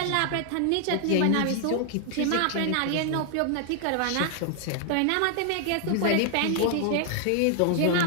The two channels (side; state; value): both; different; correlation 0.00